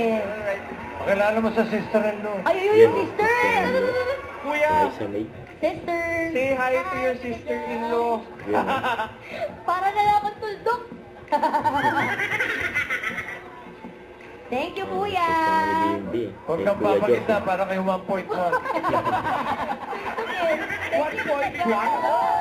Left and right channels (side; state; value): both; identical; correlation 1.00